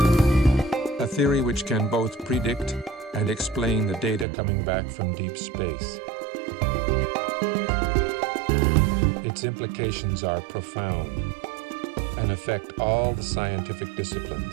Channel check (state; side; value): drops out; left; at 4.2 s